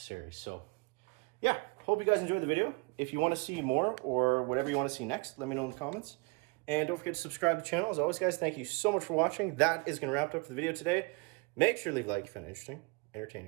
So yeah, hope you guys enjoyed the video. If you want to see more or whatever you want to see next, let me know in the comments. And don't forget to subscribe to the channel. As always, guys, thank you so much for watching. That is going to wrap up the video today. Make sure to leave a like if you found it interesting,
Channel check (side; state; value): left; quieter; 29.9 dB